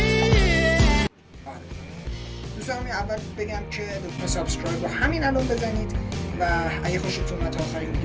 دوستان اول بگم که لطفا سابسکرایب رو همین الان بزنید و اگه خوشتون اومد تا آخرین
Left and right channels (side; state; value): both; identical; correlation 1.00